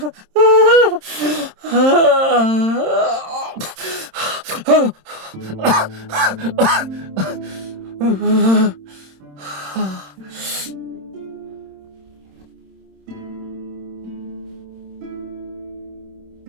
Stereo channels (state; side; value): late; left; 26 ms